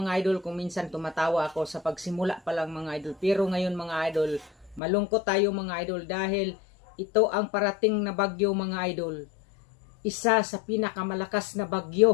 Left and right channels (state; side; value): drops out; right; at 4.8 s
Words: idol, kung minsan tumatawa ako sa pagsimula pa lang mga idol. Pero ngayon mga idol, malungkot tayo mga idol dahil ito ang parating na bagyo mga idol. Isa sa pinakamalakas na